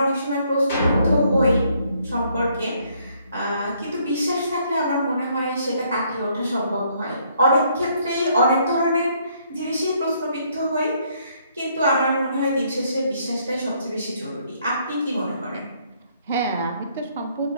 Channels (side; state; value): both; inverted; correlation -0.68